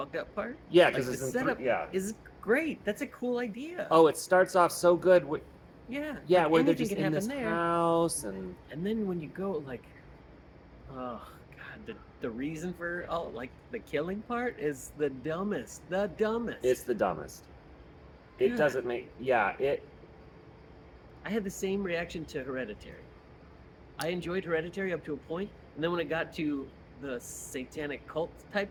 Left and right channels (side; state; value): both; identical; correlation 1.00